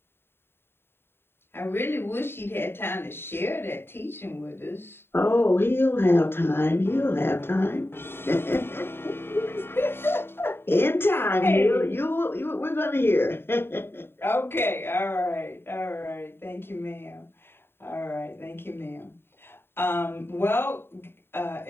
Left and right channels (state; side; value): late; right; 0.11 ms